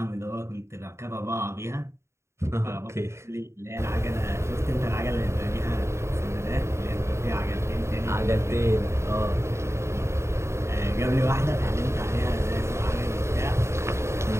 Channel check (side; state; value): left; late; 0.13 ms